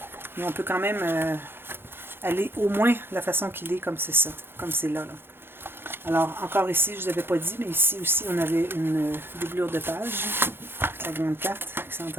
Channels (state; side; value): late; left; 0.11 ms